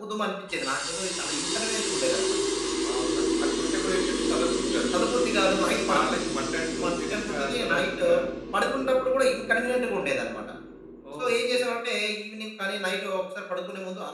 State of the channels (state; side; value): identical; both; correlation 1.00